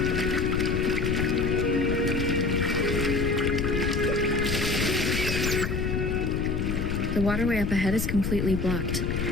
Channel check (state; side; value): noise; left; rumble, 1 dB below the sound